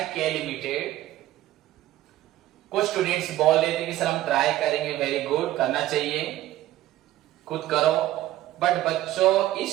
के लिमिटेड। कुछ स्टूडेंट्स बोल रहे थे कि सर हम ट्राई करेंगे, वेरी गुड, करना चाहिए, खुद करो। बट बच्चों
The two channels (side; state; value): left; quieter; 14.6 dB